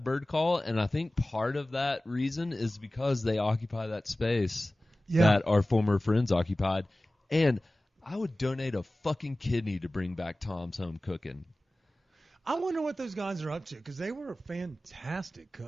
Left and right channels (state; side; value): normal; both; correlation 0.97